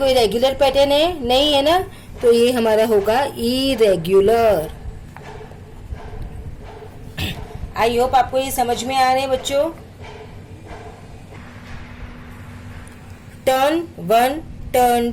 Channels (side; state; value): both; identical; correlation 1.00